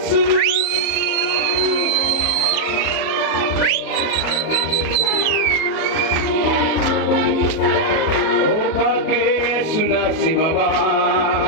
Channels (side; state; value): right; late; 37 ms